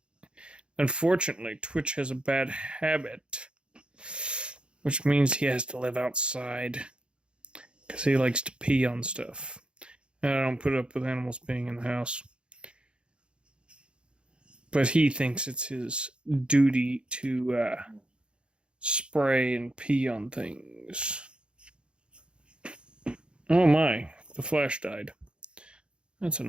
Unfortunately, Twitch has a bad habit, which means he has to live outside because he likes to pee on stuff. And I don't put up with animals being in the house. But he thinks it's his duty to spray and pee on things. Oh my, the flash died. That's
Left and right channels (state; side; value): late; left; 0.055 ms